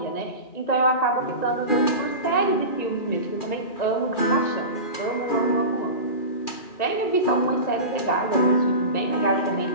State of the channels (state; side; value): late; right; 2.4 ms